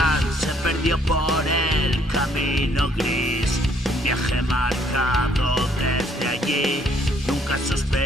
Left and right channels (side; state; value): both; normal; correlation 0.65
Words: se perdió por el camino gris, un viaje marcado desde allí, nunca